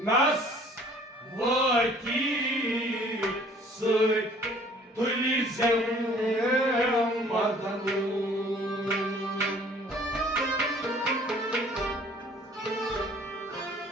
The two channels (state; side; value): normal; both; correlation 0.54